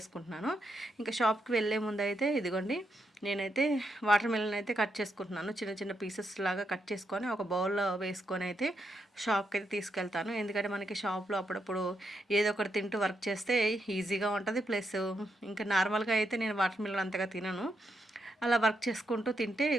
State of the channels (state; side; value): normal; both; correlation 0.82